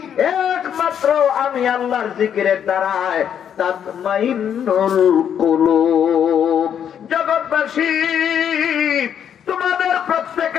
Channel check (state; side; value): quieter; right; 8.8 dB